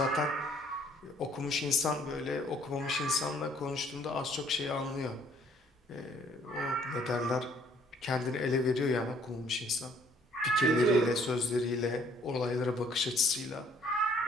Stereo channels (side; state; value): both; normal; correlation 0.62